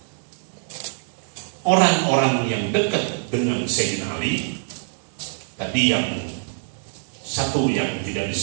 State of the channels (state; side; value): silent; left; digital silence